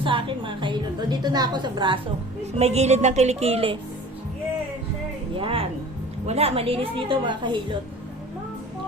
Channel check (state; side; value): normal; both; correlation 0.43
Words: akin mga kahilot. Dito na ako sa braso. May gilid ng kilikili. Yan. Wala, malinis dito mga kahilot.